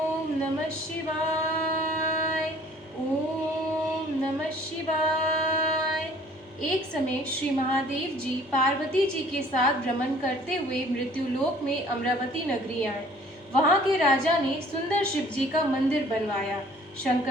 नमः शिवाय। ओम नमः शिवाय। एक समय श्री महादेव जी पार्वती जी के साथ भ्रमण करते हुए मृत्युलोक में अमरावती नगरी आए। वहां के राजा ने सुंदर शिव जी का मंदिर बनवाया।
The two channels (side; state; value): both; normal; correlation 0.54